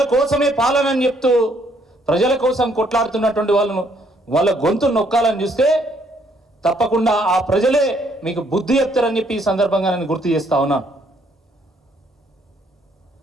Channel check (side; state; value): both; normal; correlation 0.68